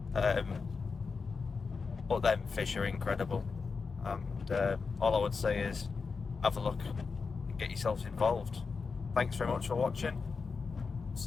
But them fish are incredible, and all I would say is have a look and get yourselves involved. Thanks very much for watching.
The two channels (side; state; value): right; quieter; 4.9 dB